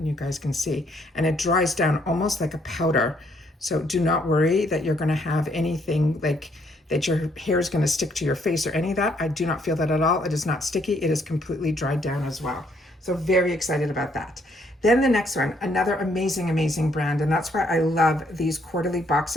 you guys can see. And it dries down almost like a powder. So do not worry that you're gonna have anything like that your hair is gonna stick to your face or any of that. I do not feel that at all. It is not sticky. It is completely dried down as well. So very excited about that. Then the next one, another amazing, amazing brand. And that's why I love these quarterly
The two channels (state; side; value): normal; both; correlation 0.69